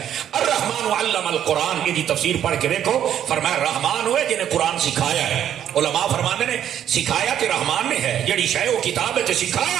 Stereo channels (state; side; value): quieter; left; 10.2 dB